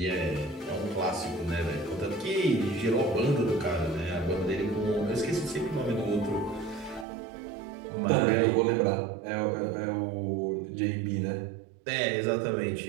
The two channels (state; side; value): drops out; left; at 7.1 s